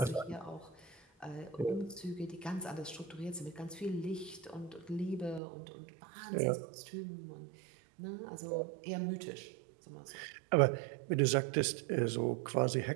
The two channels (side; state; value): left; drops out; at 5.4 s